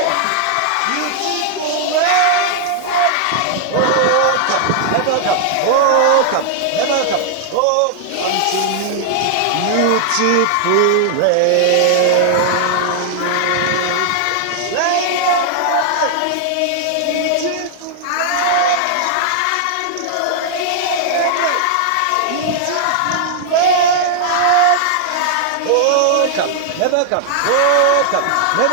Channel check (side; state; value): both; different; correlation -0.01